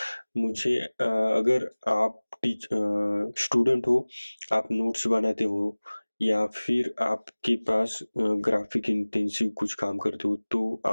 मुझे अगर आप स्टूडेंट हो, आप नोट्स बनाते हो या फिर आपके पास ग्राफिक इंटेंसिव कुछ काम करते हो, तो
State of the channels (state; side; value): inverted; both; correlation -1.00